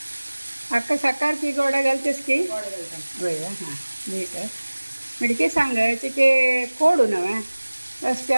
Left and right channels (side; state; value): both; inverted; correlation -1.00